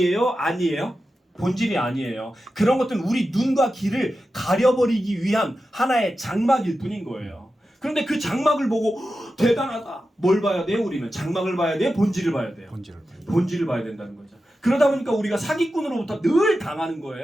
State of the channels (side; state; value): both; normal; correlation 0.92